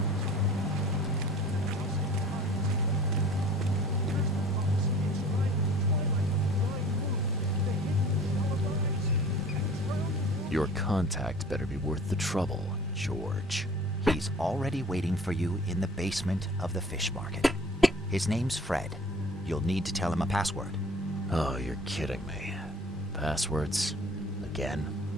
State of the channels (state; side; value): normal; both; correlation 0.47